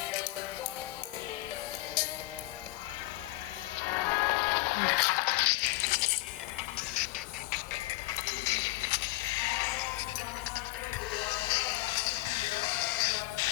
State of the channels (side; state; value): right; quieter; 20.3 dB